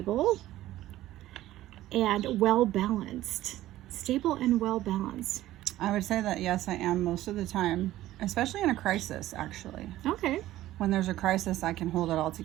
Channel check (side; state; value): left; quieter; 14.8 dB